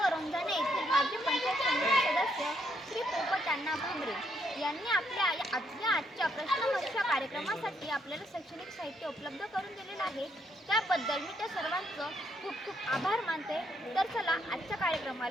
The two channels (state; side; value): normal; both; correlation 0.74